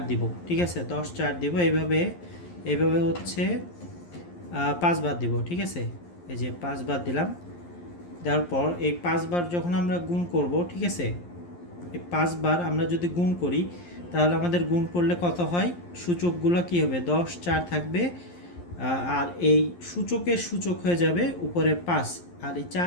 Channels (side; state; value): right; late; 11 ms